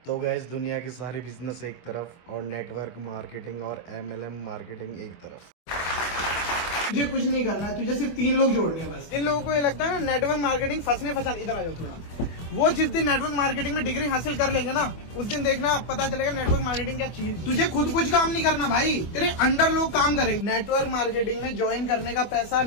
तो गैस दुनिया की सारी बिजनेस एक तरफ और नेटवर्क मार्केटिंग और MLM मार्केटिंग एक तरफ। तुझे कुछ नहीं करना है, तुझे सिर्फ 3 लोग जोड़ने हैं बस। इन लोगों को ये लगता है ना नेटवर्क मार्केटिंग फंसने इधर आ जाओ थोड़ा। वो जिस दिन नेटवर्क मार्केटिंग में डिग्री हासिल कर लेंगे ना, उस दिन देखना पता चलेगा नेटवर्क मार्केटिंग क्या चीज। तुझे खुद कुछ काम नहीं करना भाई, तेरे अंडर लोग काम करेंगे। नेटवर्क मार्केटिंग में ज्वाइन करने का पैसा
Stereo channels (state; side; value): late; right; 24 ms